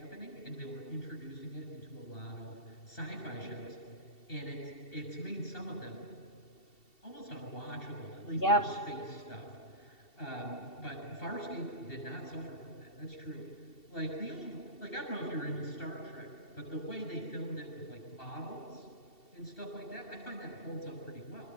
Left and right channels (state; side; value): late; right; 2.7 ms